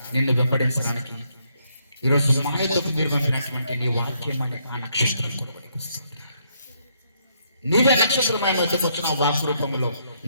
నిన్ను వెంబడించడానికి ఈరోజు మాయతకు మీరు పంపినటువంటి నీ వాక్యం అనే ఆ నక్షత్రం నీవే నక్షత్రమైన వచ్చిన వాక్ రూపంలో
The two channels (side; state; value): both; inverted; correlation -0.73